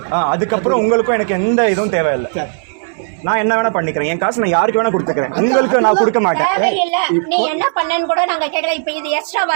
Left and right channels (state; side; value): silent; left; digital silence